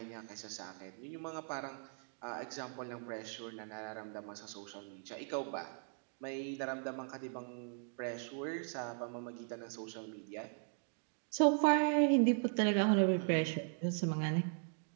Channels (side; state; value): left; silent; 52 dB below the other